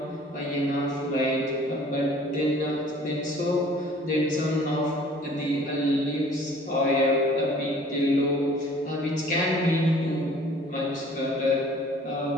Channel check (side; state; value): both; normal; correlation 0.52